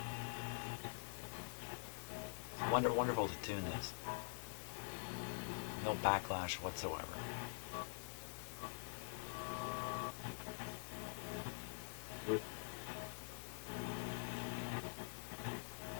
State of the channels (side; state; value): right; silent; digital silence